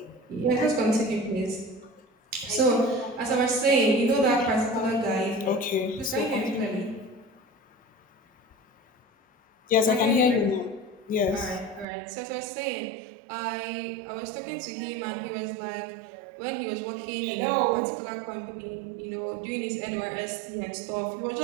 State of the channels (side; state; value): left; drops out; at 11.9 s